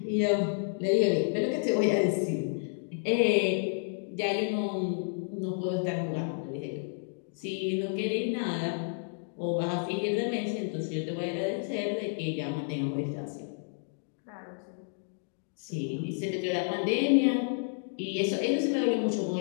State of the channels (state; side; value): silent; right; digital silence